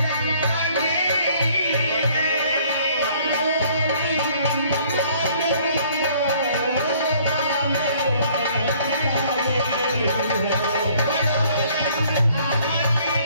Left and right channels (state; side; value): inverted; both; correlation -0.59